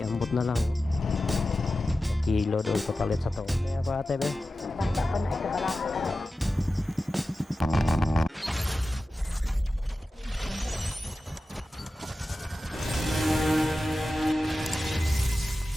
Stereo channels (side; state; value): both; normal; correlation 0.94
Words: ambot na lang. Kilo doon papalit sa to. Kaya pa ate be.